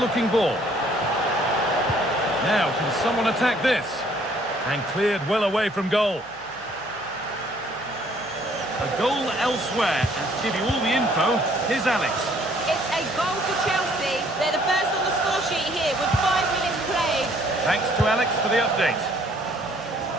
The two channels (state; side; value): noise; right; hum, 29 dB below the sound